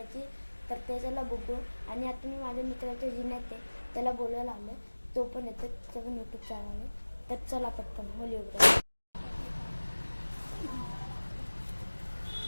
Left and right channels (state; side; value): inverted; both; correlation -1.00